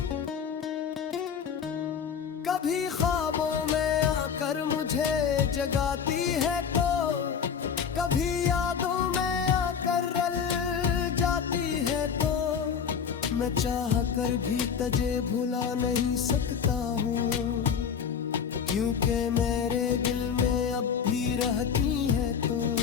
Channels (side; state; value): right; quieter; 7.1 dB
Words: कभी ख्वाबों में आकर मुझे जगाती है तो, कभी यादों में आकर रल जाती है तो। मैं चाह कर भी तुझे भुला नहीं सकता हूँ, क्योंकि मेरे दिल में अब भी रहती है तो।